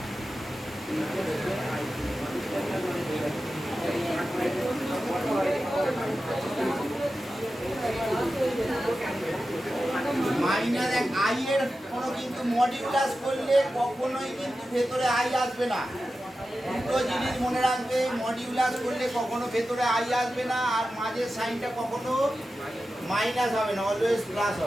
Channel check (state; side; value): normal; both; correlation 0.92